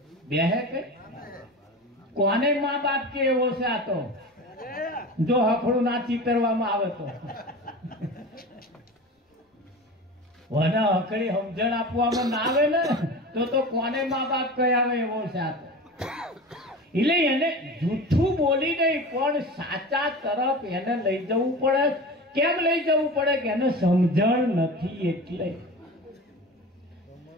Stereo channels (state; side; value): normal; both; correlation 0.32